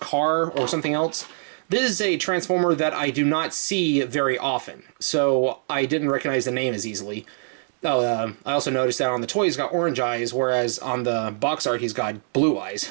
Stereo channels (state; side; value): silent; left; digital silence